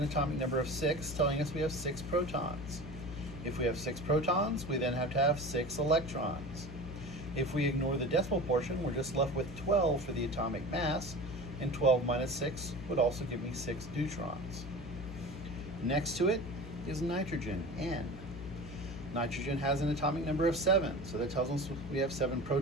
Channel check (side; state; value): left; noise; hum, 11 dB below the sound